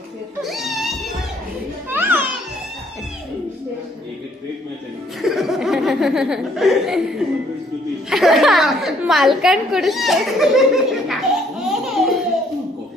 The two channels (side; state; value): both; normal; correlation 0.64